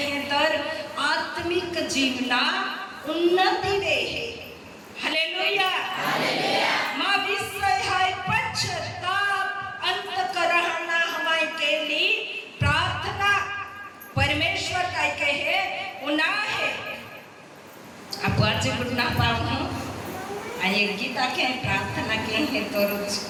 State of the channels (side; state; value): both; identical; correlation 1.00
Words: तर आत्मिक जीवना उन्नति वे है। हालेलुया माँ विषय है पश्चाताप अंतकरणा हमारे के लिए प्रार्थना परमेश्वर का कहे उना है। अब आज गुड़ना पाऊँ आये गीता के प्रार्थना के हैं तो रोज